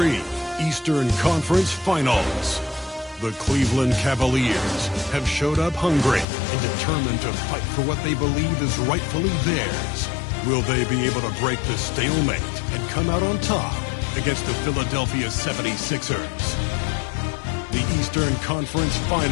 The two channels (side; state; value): right; drops out; at 6.2 s